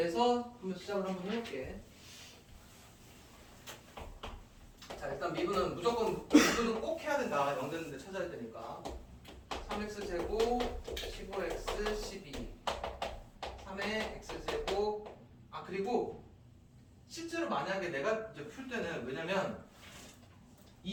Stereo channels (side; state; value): both; identical; correlation 1.00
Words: 한번 시작을 한번 해볼게. 자, 일단 미분은 무조건 미분은 꼭 해야 된다. 0 되는데 찾아야 되니까. 3x제곱 15x 12 3의 x제곱 그리고 실제로 만약에 내가 이제 풀 때는 왜냐면 이